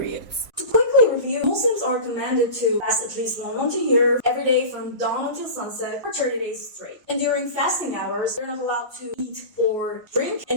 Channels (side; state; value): left; late; 1.3 ms